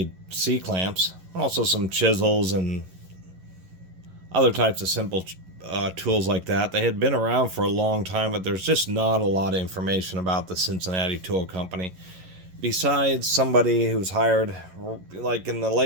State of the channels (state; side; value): late; left; 11 ms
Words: C-clamps, also some chisels and other types of simple tools like that. They had been around for a long time, but there's just not a lot of information about the Cincinnati Tool Company. Besides somebody who was hired like in the